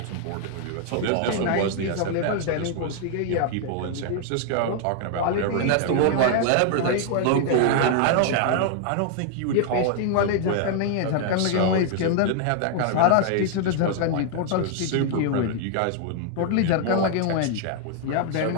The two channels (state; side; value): different; both; correlation 0.00